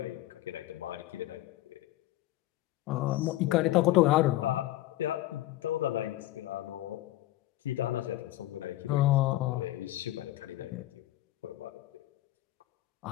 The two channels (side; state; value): right; quieter; 15.9 dB